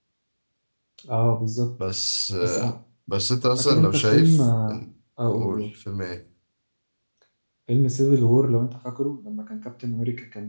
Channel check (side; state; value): both; inverted; correlation -1.00